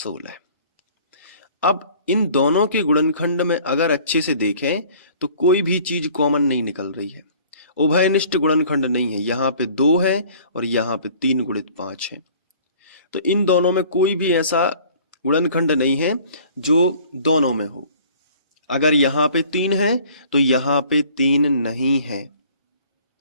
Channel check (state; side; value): inverted; both; correlation -0.51